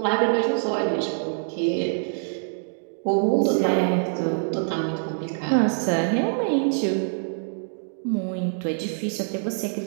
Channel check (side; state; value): left; silent; digital silence